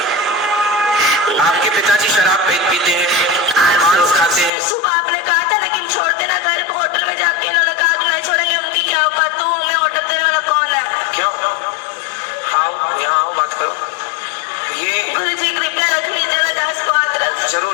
आपके पिताजी शराब पीते हैं, मांस खाते हैं। सुबह आपने कहा था लेकिन छोड़ देना घर को, होटल में जाके इन्होंने कहा कि नहीं छोड़ेंगे। उनकी क्या औकात, तू हमें ऑर्डर देने वाला कौन है? क्यों? आओ यहाँ आओ, बात करो। ये गुरु जी कृपया रख लीजिए ना, 10 को हाथ रख।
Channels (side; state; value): right; drops out; at 4.5 s